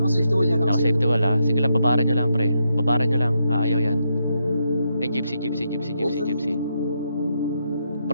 wall yan. Naka-safety wall, ha. Sige lang, babaran nyo lang, pre. Babaran nyo lang. Ayaw yan. Ay, gypsy, gypsy, gypsy, gypsy, gypsy.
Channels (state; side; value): inverted; both; correlation -0.81